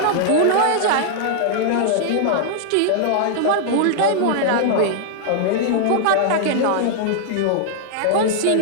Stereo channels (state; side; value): different; both; correlation -0.01